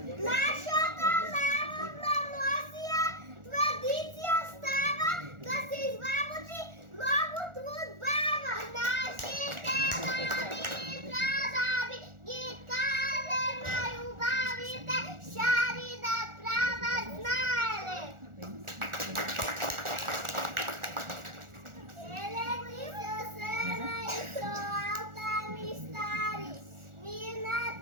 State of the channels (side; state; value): left; late; 1.4 ms